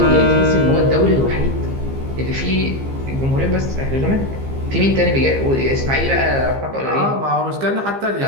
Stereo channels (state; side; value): late; left; 15 ms